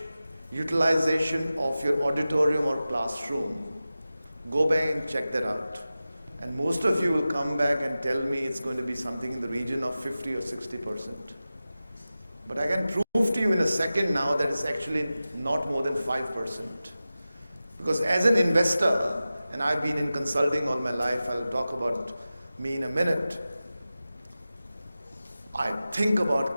utilization of your auditorium or classroom? Go back and check that out. And most of you will come back and tell me it's going to be something in the region of 50 or 60%. But I can prove to you in a second now that it's actually not more than 5%. Because as an investor, and I've been in consulting all my life, I'll talk about me in a minute, I think about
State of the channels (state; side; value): inverted; both; correlation -0.95